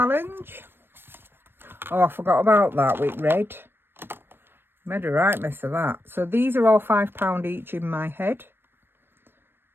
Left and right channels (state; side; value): late; left; 0.10 ms